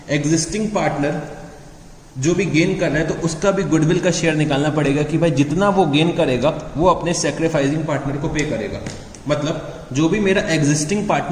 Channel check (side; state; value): both; identical; correlation 1.00